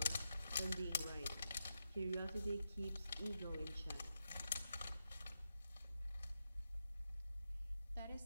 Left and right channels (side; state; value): both; inverted; correlation -0.87